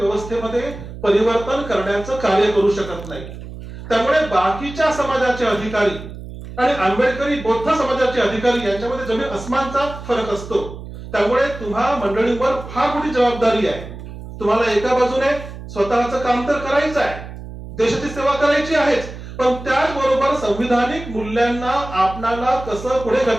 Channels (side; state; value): right; noise; hum, 12 dB below the sound